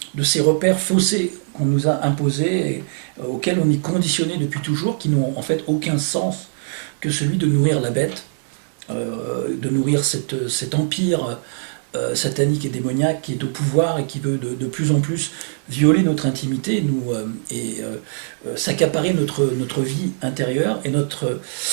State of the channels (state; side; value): silent; left; 65 dB below the other